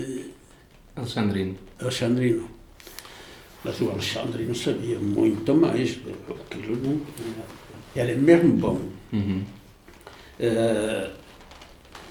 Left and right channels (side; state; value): both; identical; correlation 1.00